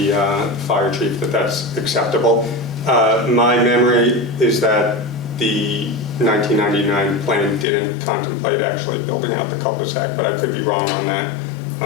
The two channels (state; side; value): drops out; right; at 7.7 s